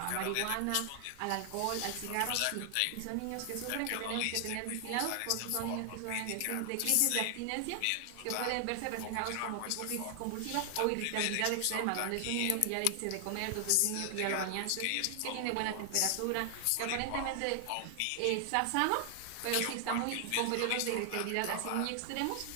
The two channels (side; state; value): both; different; correlation 0.00